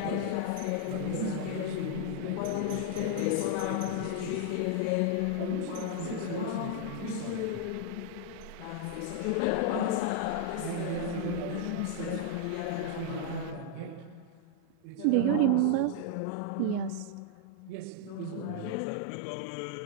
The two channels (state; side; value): different; both; correlation -0.01